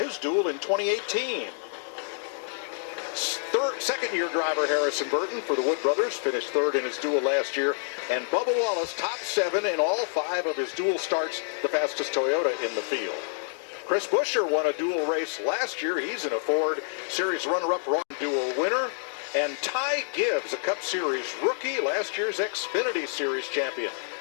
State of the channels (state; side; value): silent; right; digital silence